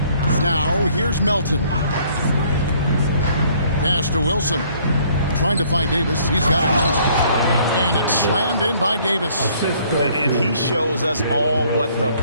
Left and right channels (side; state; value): both; inverted; correlation -0.61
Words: Now here's Melton. Pass to Wilson. Trying to find Davis. He's got it now. And it's slammed in by Davis. And he shows us all what the